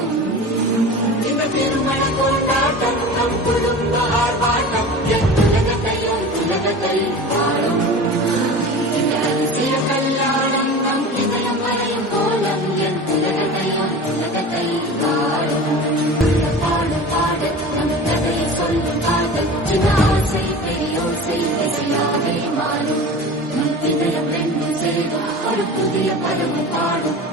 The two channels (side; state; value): both; normal; correlation 0.34